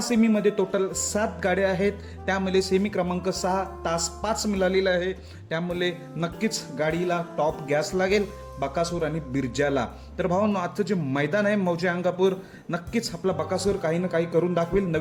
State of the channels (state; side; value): identical; both; correlation 1.00